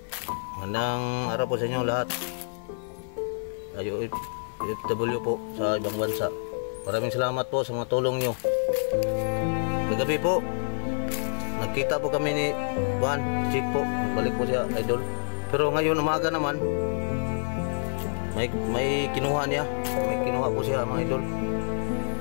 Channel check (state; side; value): silent; right; 60 dB below the other